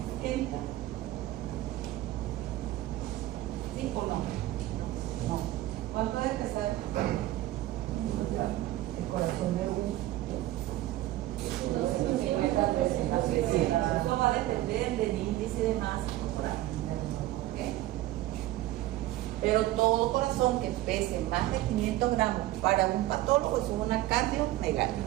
¿Sí o no? No. ¿Cuánto debe pesar el corazón de un? Eso va a depender del índice de masa corporal. Pero todo corazón que pese más de 500 gramos para un patólogo es una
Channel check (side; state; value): left; quieter; 15.5 dB